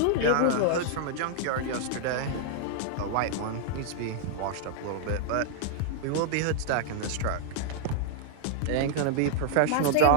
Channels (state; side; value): different; both; correlation -0.01